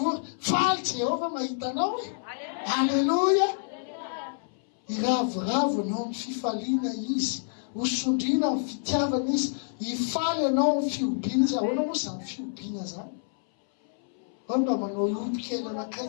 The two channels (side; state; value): right; silent; 59 dB below the other